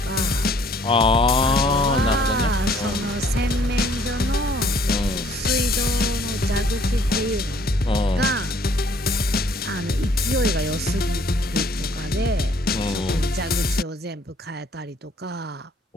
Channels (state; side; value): normal; both; correlation 0.61